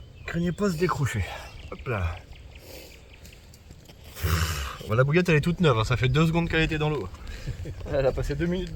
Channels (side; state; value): both; identical; correlation 1.00